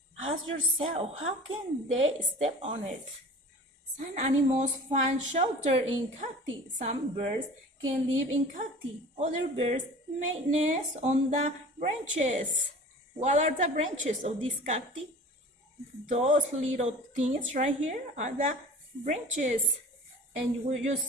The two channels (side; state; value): both; normal; correlation 0.41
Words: Ask yourself, how can they step on it? Some animals find shelter in cacti. Some birds can live in cacti. Other birds make nests on the branches. What are the branches of this cacti? Those little things right here are the branches. And you